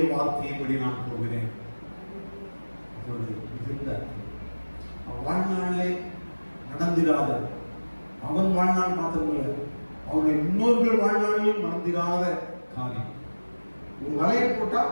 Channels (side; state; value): both; inverted; correlation -1.00